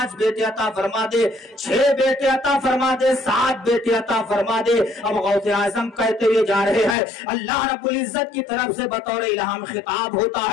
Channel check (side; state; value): right; drops out; at 7.0 s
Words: بیٹے عطا فرما دے، 6 بیٹے عطا فرما دے، 7 بیٹے عطا فرما دے۔ اب غوث اعظم کہتے ہوئے جا رہے ہیں، اللہ رب العزت کی طرف سے بطور الہام خطاب ہوتا